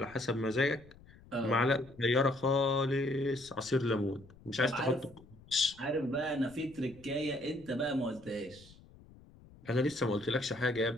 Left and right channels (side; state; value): left; noise; rumble, 23 dB below the sound